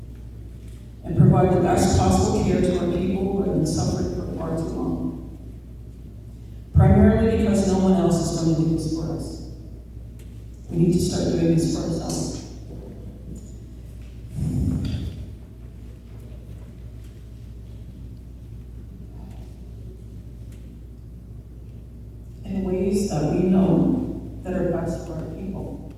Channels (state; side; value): identical; both; correlation 1.00